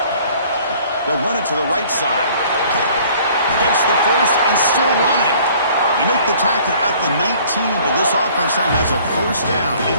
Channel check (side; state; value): both; inverted; correlation -0.54